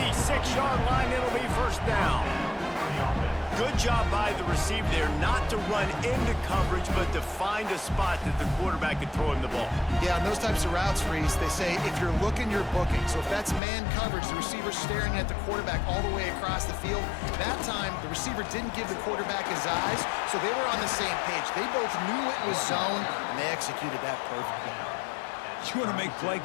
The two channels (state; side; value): drops out; right; at 13.6 s